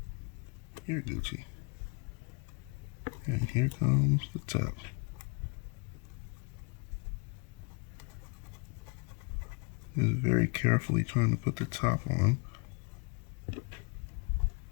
Here, Gucci. And here comes the top. Is very carefully trying to put the top on.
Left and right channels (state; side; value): quieter; right; 33.3 dB